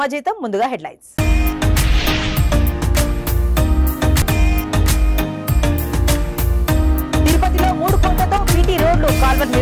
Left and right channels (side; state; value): both; identical; correlation 1.00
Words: ముందుగా హెడ్లైన్స్ తిరుపతిలో 3 కోట్లతో బీటీ రోడ్లు కాల్వర్